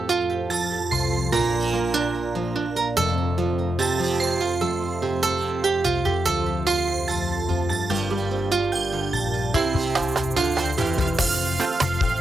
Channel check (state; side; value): normal; both; correlation 0.87